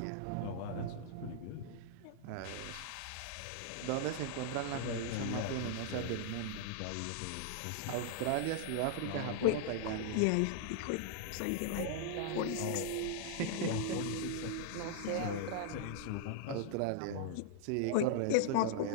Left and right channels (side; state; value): both; different; correlation -0.01